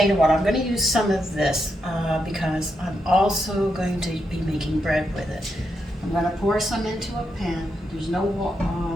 water. I'm going to use some of this because I'm also going to be making bread with it. I'm going to pour some into a pan. There's no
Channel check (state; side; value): normal; both; correlation 0.83